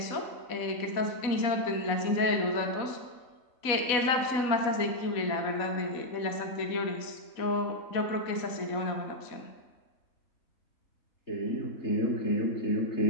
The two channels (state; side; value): late; right; 4.0 ms